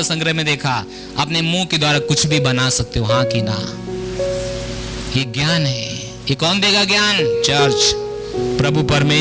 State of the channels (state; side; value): identical; both; correlation 1.00